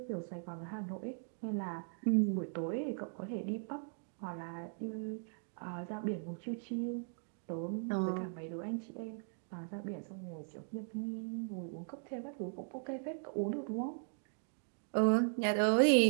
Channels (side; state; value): left; silent; 52 dB below the other